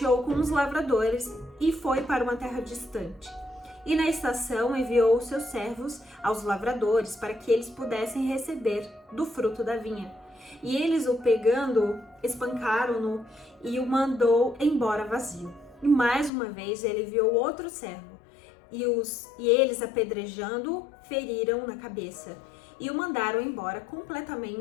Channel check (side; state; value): right; drops out; at 16.3 s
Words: com os lavradores, e foi para uma terra distante. E na estação enviou os seus servos aos lavradores para que eles pudessem receber do fruto da vinha. E eles o pegando, espancaram-no e o mandou embora vazio. E mais uma vez ele enviou outro servo, e eles apedrejando-o, feriram na cabeça, e o mandaram embora